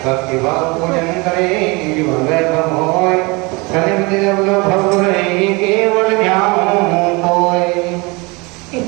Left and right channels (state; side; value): quieter; left; 26.8 dB